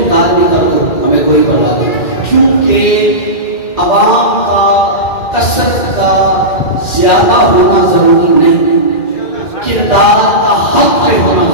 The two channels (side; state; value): right; late; 2.4 ms